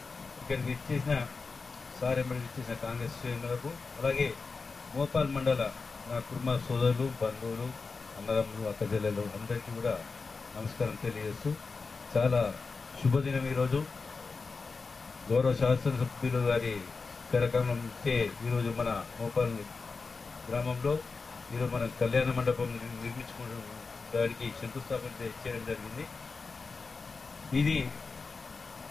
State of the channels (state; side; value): quieter; right; 4.4 dB